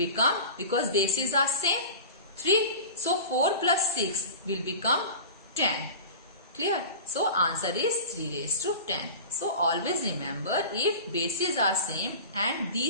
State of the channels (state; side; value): inverted; both; correlation -0.35